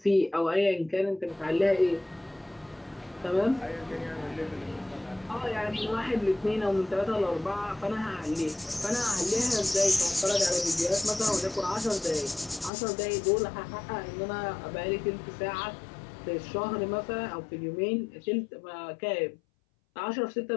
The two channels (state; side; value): drops out; right; at 12.7 s